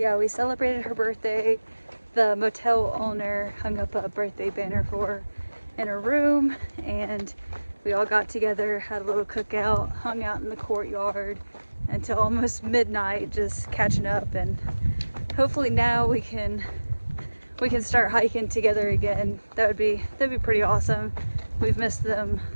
we celebrated her birthday. The motel owner hung up a birthday banner for her in her room, and we all got together, had a little cookout, hung out in the courtyard until almost midnight, just catching up, and hopefully now we can start hiking together again. That'd be pretty awesome. We've missed them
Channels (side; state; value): both; inverted; correlation -1.00